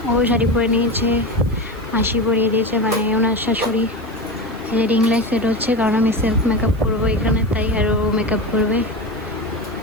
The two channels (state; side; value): noise; right; hiss, 27 dB below the sound